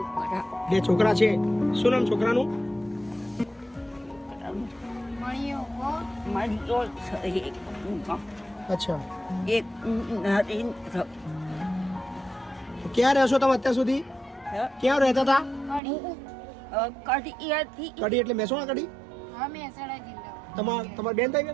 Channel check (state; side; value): drops out; left; at 15.8 s